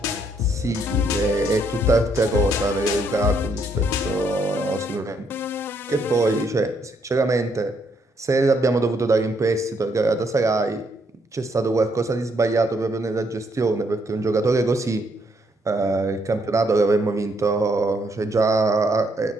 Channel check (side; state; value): both; normal; correlation 0.72